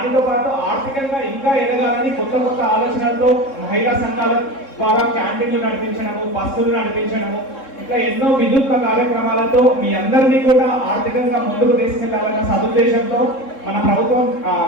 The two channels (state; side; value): late; right; 3.7 ms